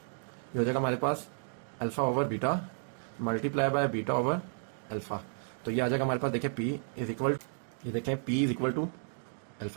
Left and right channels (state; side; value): silent; left; 56 dB below the other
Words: ये हो जाएगा हमारे पास alpha over beta multiply by beta over alpha. तो ये आ जाएगा हमारे पास देखिए p इज इक्वल, ये देखें p is equal to